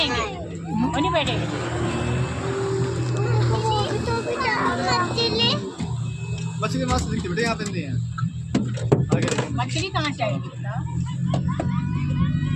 वो नहीं बैठेंगे। मछली मस्त दिखती बेटे, यहाँ पे नहीं है। मछली कहाँ चाहिए?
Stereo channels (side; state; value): both; identical; correlation 1.00